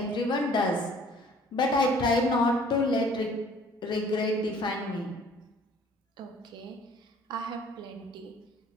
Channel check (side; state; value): both; normal; correlation 0.54